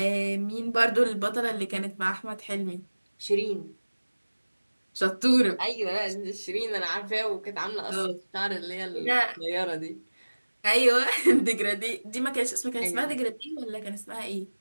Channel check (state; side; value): inverted; both; correlation -1.00